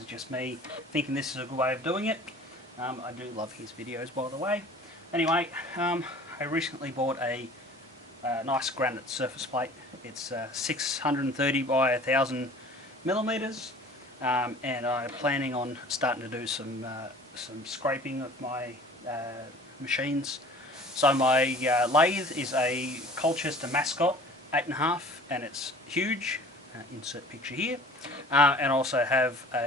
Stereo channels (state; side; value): normal; both; correlation 0.46